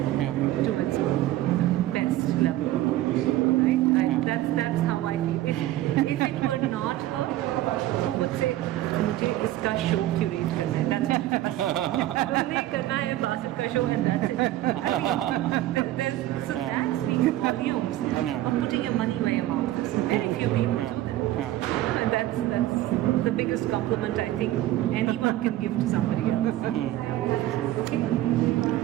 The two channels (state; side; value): quieter; left; 14.9 dB